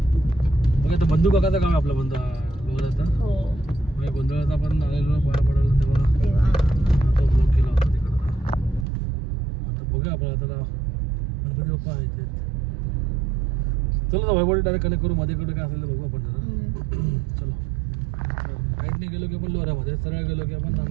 बघा आता बंधू काकाचं काम आहे आपलं लोऱ्याचं. हो म्हणजे गोंधळाचा आपण आलेलो पाया पडायला तेव्हा तेव्हा तो ब्लॉक केला होता तिकडं. आता बघूया आपण आता गणपती बाप्पा आहे ते. चलो ना वैभवडी डायरेक्ट कनेक्ट करू. मध्ये काय असेल तर बघू आपण जरा. चलो राईटने गेलो की आपण लोऱ्यामध्ये, सरळ गेलो की आपण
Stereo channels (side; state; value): left; drops out; at 8.8 s